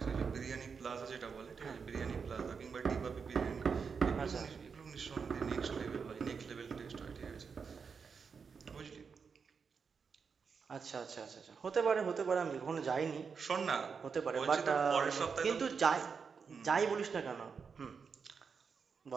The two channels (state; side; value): quieter; left; 5.8 dB